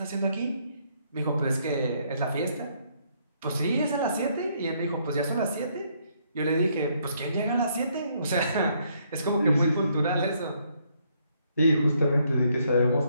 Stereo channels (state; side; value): inverted; both; correlation -0.70